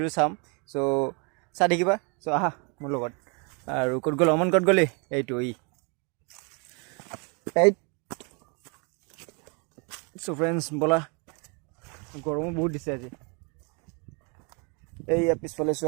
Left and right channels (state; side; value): quieter; left; 33.8 dB